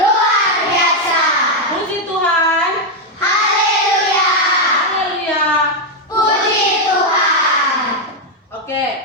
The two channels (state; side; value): normal; both; correlation 0.02